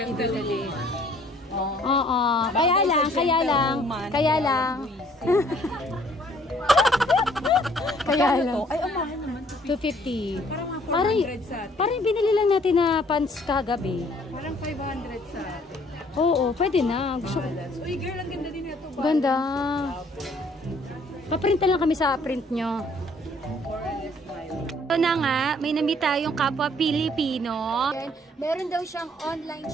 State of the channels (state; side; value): normal; both; correlation 0.60